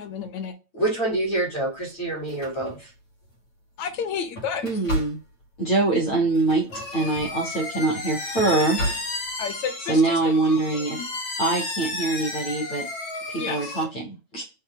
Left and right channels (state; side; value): late; right; 9.0 ms